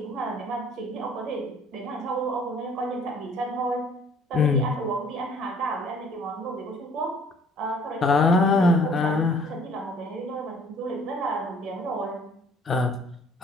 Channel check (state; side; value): normal; both; correlation 0.56